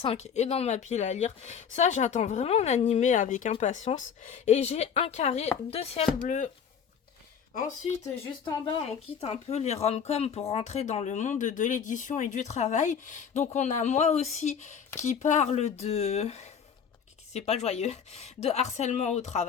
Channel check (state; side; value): quieter; right; 7.3 dB